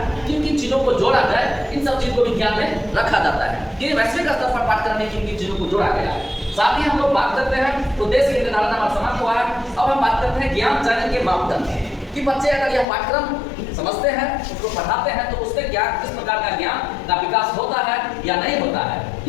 किन किन चीजों को जोड़ा जाए, इन सब चीजों को भी ध्यान में रखा जाता है कि वैश्विक स्तर पर पाठ्यक्रम में किन किन चीजों को जोड़ा गया है। साथ ही हम लोग बात करते हैं उद्देश्य के निर्धारण हमारा समाप्त हुआ है। अब हम बात करते हैं ज्ञान चयन के मापदंड कि बच्चे अगर यह पाठ्यक्रम समझते हैं, उसको पढ़ाते हैं तो उससे क्या किस प्रकार का ज्ञान का विकास होता है या नहीं होता है,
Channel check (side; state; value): right; drops out; at 12.9 s